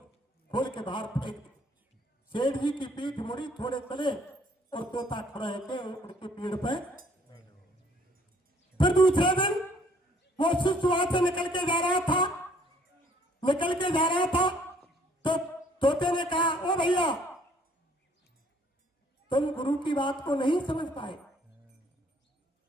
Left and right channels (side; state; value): both; normal; correlation 0.62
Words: के बाहर फेंक दिया। सेठ जी की पीठ मुड़ी, थोड़े चले और तोता खड़ा है उनके पेड़ पे। फिर दूसरे दिन वो शिष्य वहां से निकल के जा रहा था तो तोते ने कहा, ओ भैया तुम गुरु की बात को नहीं समझ पाए